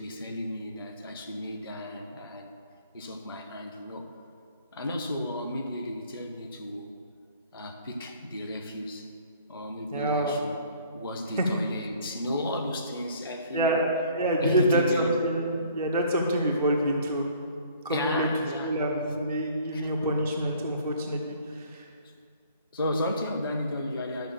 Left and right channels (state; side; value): inverted; both; correlation -0.55